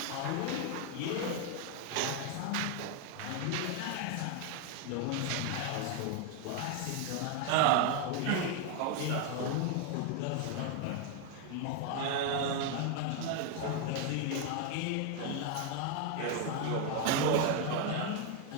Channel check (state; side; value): different; both; correlation 0.01